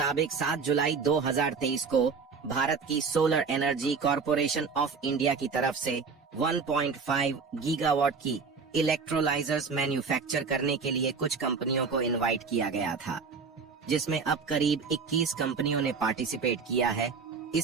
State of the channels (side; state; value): left; quieter; 5.2 dB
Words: 7 जुलाई 2023 को भारत की solar energy corporation of India की तरफ से 1.5 गीगावाट की इलेक्ट्रोलाइजर्स मैन्युफैक्चर करने के लिए कुछ कंपनियों को इनवाइट किया गया था, जिसमें अब करीब 21 कंपनियों ने पार्टिसिपेट किया है।